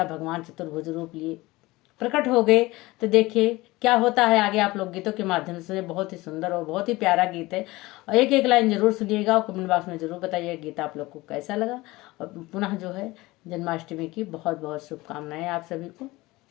भगवान चतुर्भुज रूप लिए प्रकट हो गए। तो देखिए क्या होता है आगे, आप लोग गीतों के माध्यम से। बहुत ही सुंदर और बहुत ही प्यारा गीत है, और एक एक लाइन जरूर सुनिएगा और कमेंट बॉक्स में जरूर बताइए गीत आप लोग को कैसा लगा। और पुनः जो है जन्माष्टमी की बहुत बहुत शुभकामनाएं आप सभी को।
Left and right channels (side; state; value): right; quieter; 20.3 dB